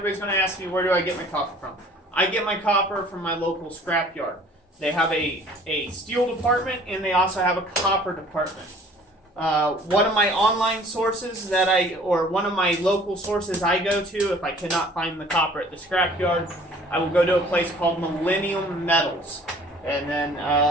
going to ask me, where do I get my copper from? I get my copper from my local scrapyard. They have a steel department and they also have a copper department. One of my online sources one of my local sources I go to, if I cannot find the copper at the scrapyard, I will go to a place called Millennium Metals. And then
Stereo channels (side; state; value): both; normal; correlation 0.52